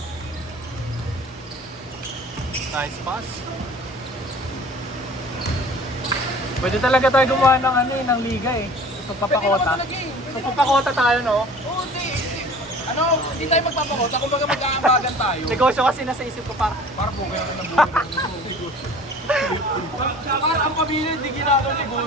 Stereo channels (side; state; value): both; normal; correlation 0.45